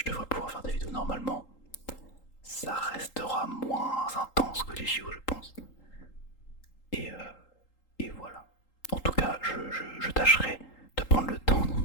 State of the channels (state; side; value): late; right; 3.8 ms